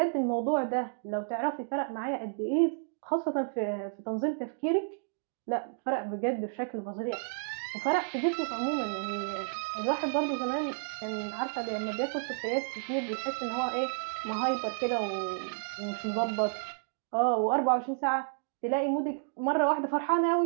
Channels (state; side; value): silent; left; digital silence